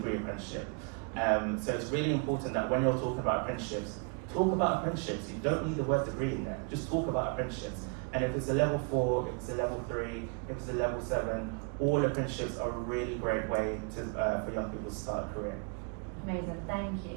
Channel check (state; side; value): quieter; left; 36.3 dB